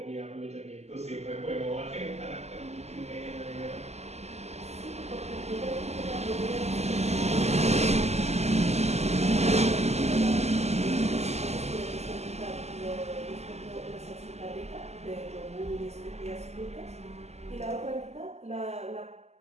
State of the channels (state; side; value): late; left; 0.32 ms